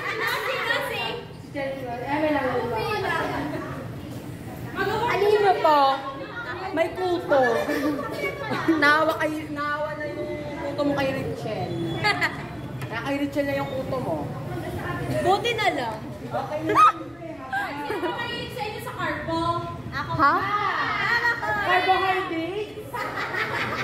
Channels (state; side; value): noise; left; rumble, 29 dB below the sound